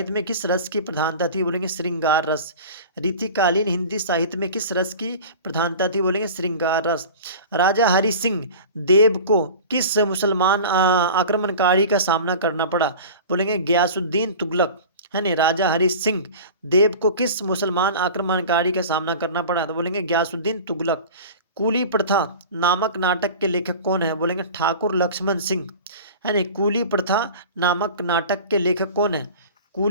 में किस रस की प्रधानता थी, बोलेंगे श्रृंगार रस। रीतिकालीन हिंदी साहित्य में किस रस की प्रधानता थी, बोलेंगे श्रृंगार रस। राजा हरि सिंह देव को किस मुसलमान आक्रमणकारी का सामना करना पड़ा, बोलेंगे गयासुद्दीन तुगलक, है नहीं। राजा हरि सिंह देव को किस मुसलमान आक्रमणकारी का सामना करना पड़ा, तो बोलेंगे गयासुद्दीन तुगलक। कूली प्रथा नामक नाटक के लेखक कौन है, बोलेंगे ठाकुर लक्ष्मण सिंह, है नहीं। कूली प्रथा नामक नाटक के लेखक कौन है,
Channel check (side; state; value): both; inverted; correlation -0.37